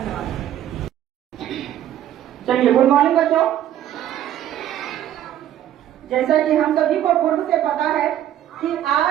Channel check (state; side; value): quieter; left; 11.6 dB